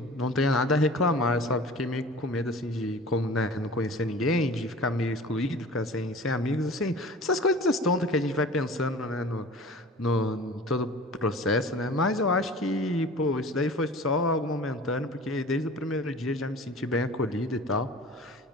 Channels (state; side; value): normal; both; correlation 0.41